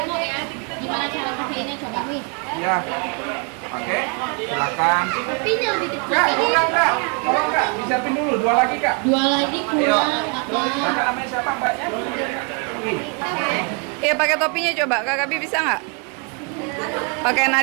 ya. Gimana cara pakainya coba? Iya. Pakai. Silakan. Kopinya lebih kecil. Kak, bukan Kak. Tolong Kak, disiapin dulu. 2 lagi Kak. Dua lagi kurang. Kakak namanya siapa Mbaknya? Iya, pakai topinya coba. Kakak Bi bisa nggak? Pakai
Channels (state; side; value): quieter; left; 35.8 dB